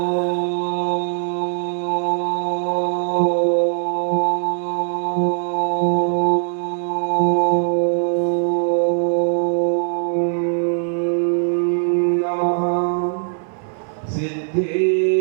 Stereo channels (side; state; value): left; silent; digital silence